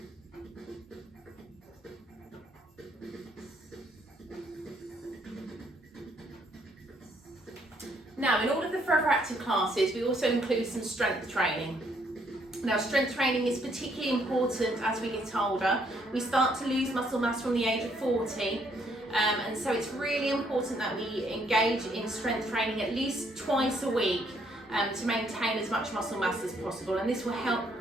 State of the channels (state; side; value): normal; both; correlation 0.69